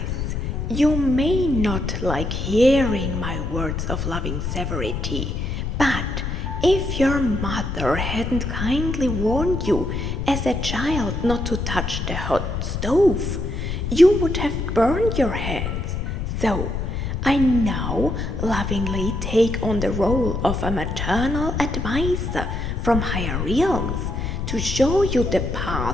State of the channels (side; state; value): left; noise; rumble, 3 dB below the sound